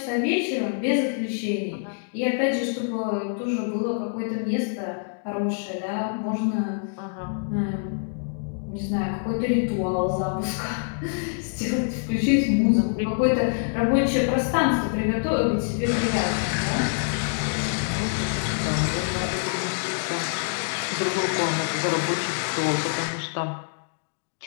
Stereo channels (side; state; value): right; silent; digital silence